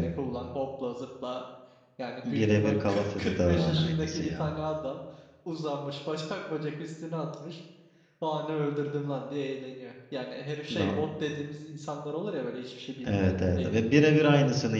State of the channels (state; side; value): identical; both; correlation 1.00